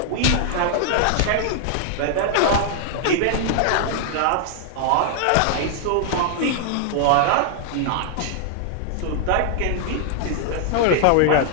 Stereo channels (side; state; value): both; different; correlation 0.00